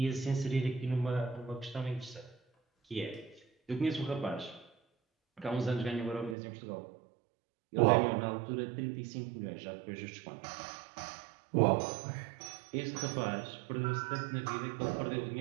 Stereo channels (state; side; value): drops out; left; at 6.4 s